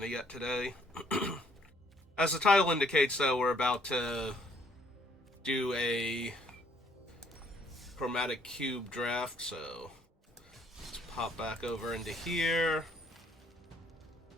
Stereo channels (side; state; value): both; normal; correlation 0.65